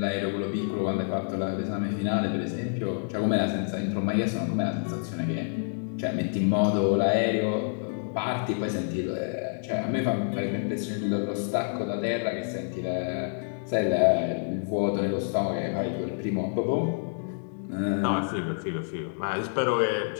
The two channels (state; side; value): silent; right; digital silence